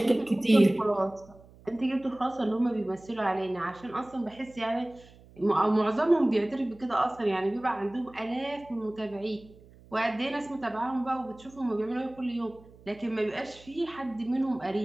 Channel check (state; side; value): noise; right; hum, 24 dB below the sound